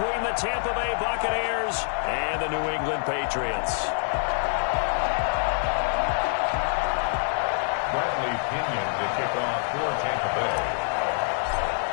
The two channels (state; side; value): silent; right; 61 dB below the other